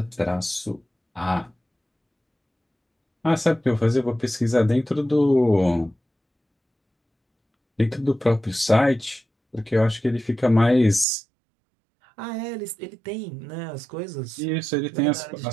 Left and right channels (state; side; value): drops out; left; at 11.1 s